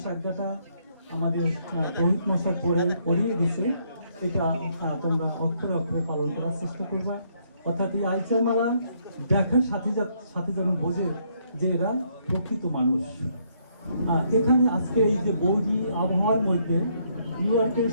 আজ্ঞাটা আমাদের রোহিত মশাই পড়িয়ে দিছে, এটা তোমরা অক্ষরে অক্ষরে পালন করার চেষ্টা করবা। অর্থাৎ এই আইচার মালা দেখার সাথে যেন বোঝে যে এরা প্রকৃত মানুষ। এখানে আজকে এই যে বৌদি আবহাওয়ার মধ্যে নিউ ইয়র্কের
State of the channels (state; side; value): inverted; both; correlation -0.71